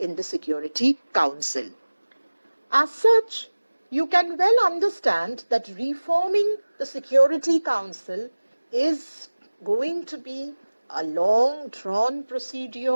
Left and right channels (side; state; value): both; inverted; correlation -1.00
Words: the Security Council. As such, you can well understand that reforming the Security Council is going to be a long drawn